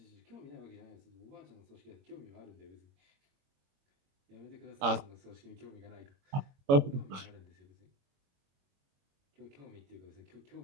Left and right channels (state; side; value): late; left; 22 ms